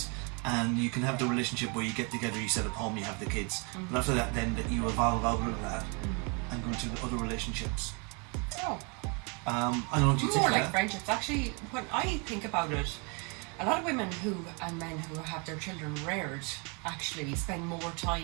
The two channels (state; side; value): quieter; left; 33.2 dB